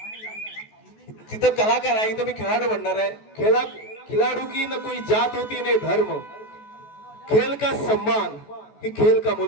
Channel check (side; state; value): right; late; 14 ms